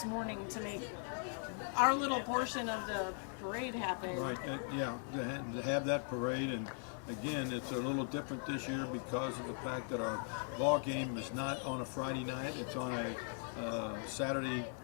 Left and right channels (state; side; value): silent; right; 51 dB below the other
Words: morning to make our little portion of the parade happen. Right, to have that parade, and again, it's a little different this year because of the fact that our ball game is not on a Friday night, it's on a Saturday